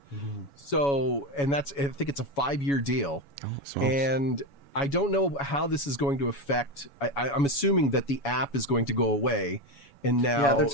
So, and I think it's a 5-year deal. And I don't know how this is going to affect. I'm assuming that the app is going to go away. And now, they're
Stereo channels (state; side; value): late; right; 7.1 ms